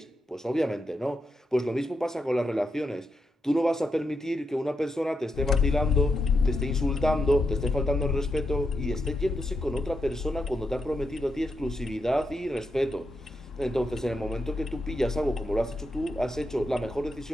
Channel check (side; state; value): both; normal; correlation 0.84